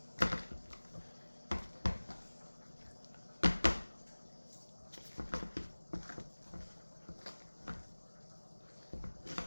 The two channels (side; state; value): both; inverted; correlation -1.00